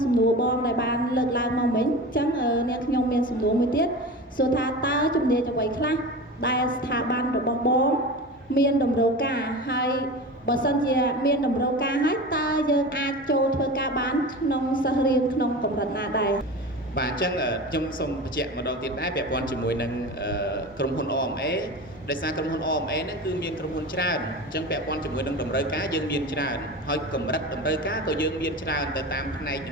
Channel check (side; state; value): both; normal; correlation 0.31